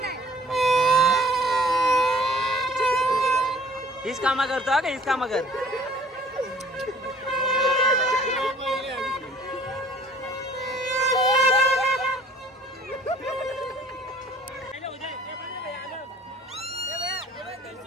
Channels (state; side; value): normal; both; correlation 0.53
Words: हीच कामा करतो का हीच कामा कर.